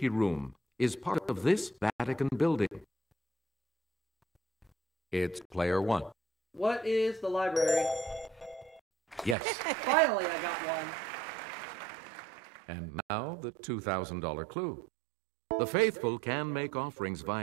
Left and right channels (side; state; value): left; drops out; at 9.3 s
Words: room is part of this Vatican building. It's player 1. What is the library? Yes. Finally, I got one. And now the $2,000 clue. The faithful can make offerings